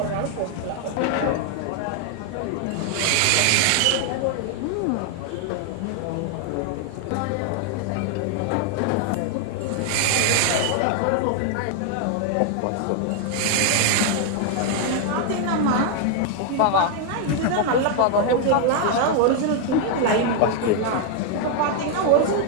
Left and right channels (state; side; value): different; both; correlation 0.00